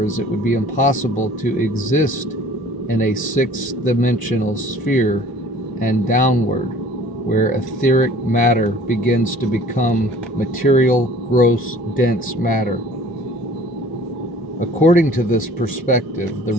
it would be impossible to exist in a sixth-dimensional sphere and downward, where etheric matter begins to become material, gross, dense matter. According to this perspective, the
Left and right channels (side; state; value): both; normal; correlation 0.50